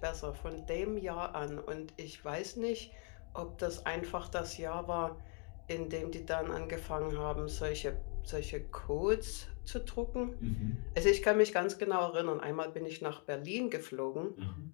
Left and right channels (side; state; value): right; quieter; 31.7 dB